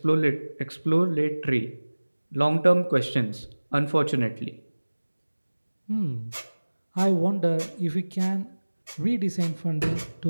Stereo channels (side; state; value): both; inverted; correlation -1.00